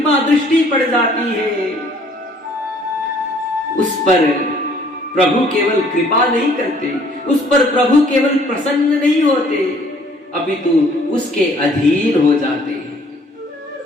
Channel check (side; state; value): both; normal; correlation 0.59